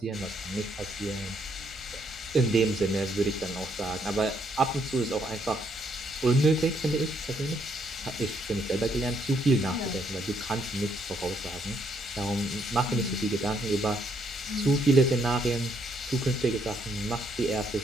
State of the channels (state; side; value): normal; both; correlation 0.72